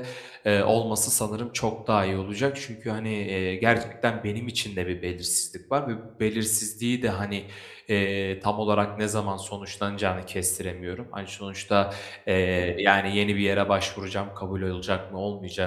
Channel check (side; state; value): both; identical; correlation 1.00